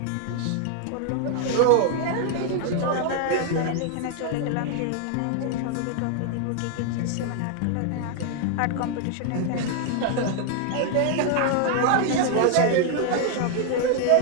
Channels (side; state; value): both; different; correlation 0.00